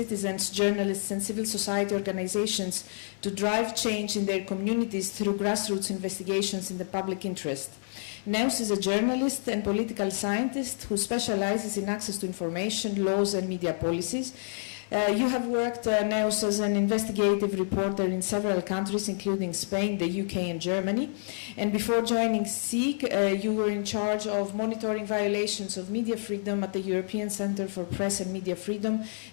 journalists and civil society organizations to drive change in their communities through grassroots investigations in the public interest. Enossi is a journalist and political scientist who specializes in access to information, laws and media policies. You have worked, Enossi, as an investigative reporter in several countries, including Spain, the UK and Germany. And before joining E.S.H.E.M, you were in charge of monitoring violations of media freedom at the European Centre for Press and Media Freedom,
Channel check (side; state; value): right; silent; 59 dB below the other